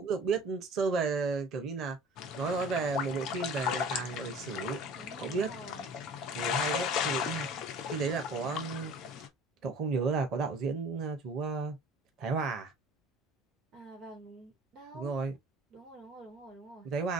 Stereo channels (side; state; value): both; normal; correlation 0.44